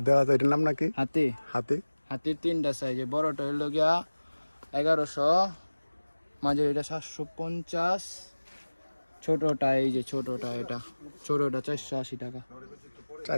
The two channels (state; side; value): inverted; both; correlation -1.00